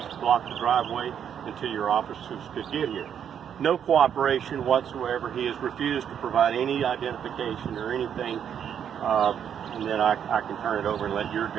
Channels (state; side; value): quieter; left; 8.6 dB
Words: block the driveway until your officers could get here. No cooperation whatsoever. He has refused to provide any identification or anything and then I can turn it over and let your